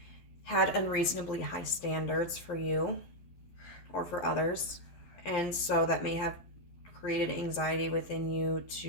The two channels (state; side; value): late; right; 12 ms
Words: had unreasonably high standards for you or for others. And so that may have created anxiety within you